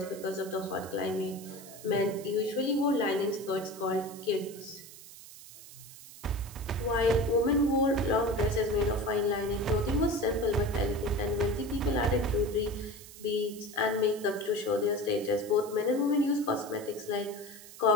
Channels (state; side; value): noise; right; hiss, 17 dB below the sound